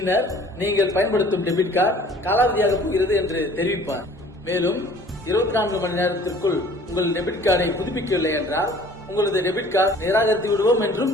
நீங்கள் பயன்படுத்தும் டெபிட் கார்டு காலாவதியாக போகிறது என்று தெரிவிப்பார். மேலும் 24 மணி நேரத்திற்குள் உங்கள் டெபிட் கார்டை புதுப்பிக்கவில்லை என்றால் உங்களது டெபிட் கார்டு நிராகரித்து விடுவோம் என்றும்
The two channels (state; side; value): normal; both; correlation 0.51